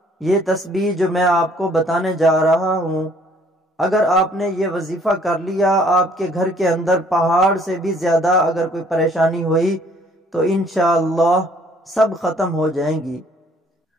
یہ تسبیح جو میں آپ کو بتانے جا رہا ہوں، اگر آپ نے یہ وظیفہ کر لیا، آپ کے گھر کے اندر پہاڑ سے بھی زیادہ اگر کوئی پریشانی ہوئی تو انشاءاللہ سب ختم ہو جائیں گی۔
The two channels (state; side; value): normal; both; correlation 0.60